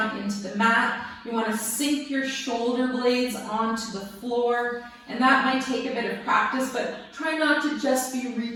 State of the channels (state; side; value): identical; both; correlation 1.00